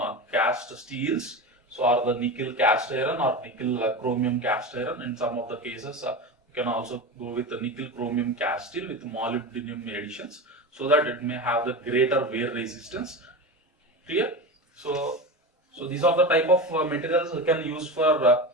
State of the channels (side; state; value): both; normal; correlation 0.25